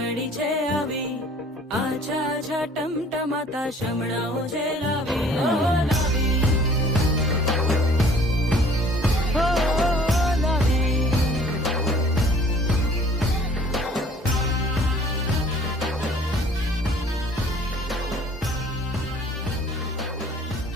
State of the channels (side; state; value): both; normal; correlation 0.53